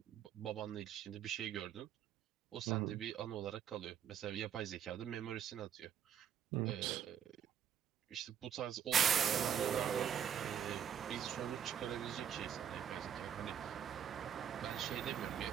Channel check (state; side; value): quieter; left; 9.0 dB